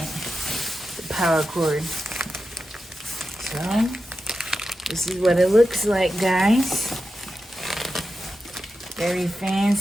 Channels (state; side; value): normal; both; correlation 0.90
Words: The power cord. So, this is what it looks like, guys. Very